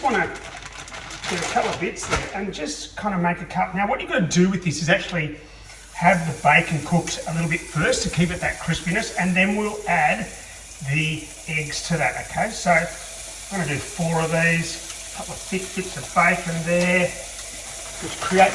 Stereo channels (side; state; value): both; identical; correlation 1.00